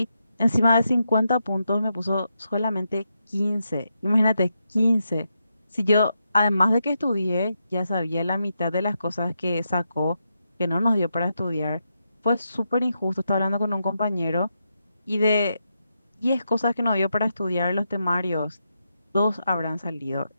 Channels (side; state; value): both; inverted; correlation -0.84